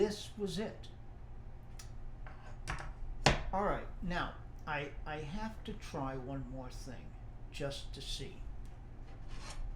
was it. All right, now I have to try one more thing just to see.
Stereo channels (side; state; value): both; identical; correlation 1.00